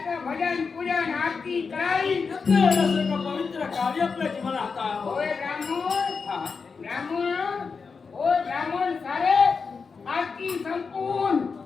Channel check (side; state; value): right; quieter; 5.1 dB